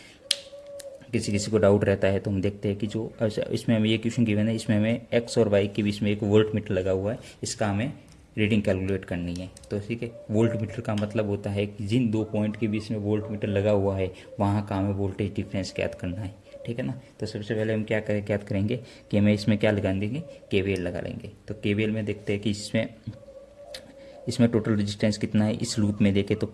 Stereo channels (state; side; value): identical; both; correlation 1.00